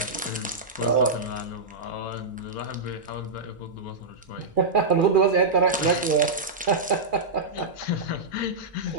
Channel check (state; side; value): quieter; left; 3.4 dB